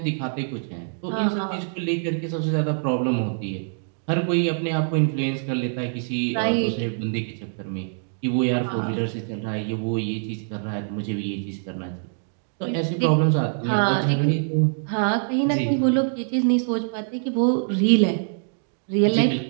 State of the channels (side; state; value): left; silent; digital silence